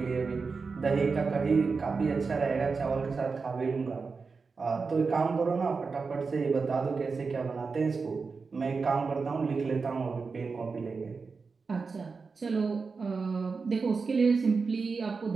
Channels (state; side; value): quieter; left; 4.7 dB